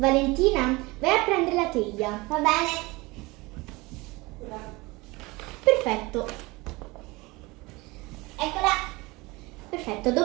vai a prendere la teglia. Va bene? Perfetto. Eccola. Perfetto,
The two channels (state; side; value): quieter; left; 23.3 dB